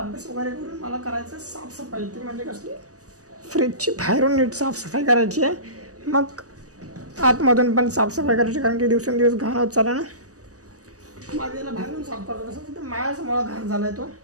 वगैरे करून मला करायचं साफसफाई. ती म्हणजे कसली, फ्रीजची बाहेरून नीट साफसफाई करायची आहे. मग आतमधून पण साफसफाई करायची, कारण की दिवसेंदिवस घाण होत चालला ना. माझ्या याला बाहेरून साफ करतो. तसं तर माझ्यासमोर घाण झाला आहे तो.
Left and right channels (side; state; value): left; late; 0.66 ms